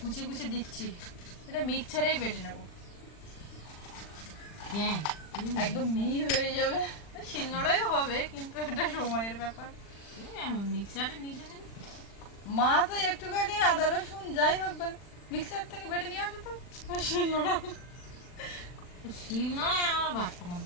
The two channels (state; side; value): late; right; 40 ms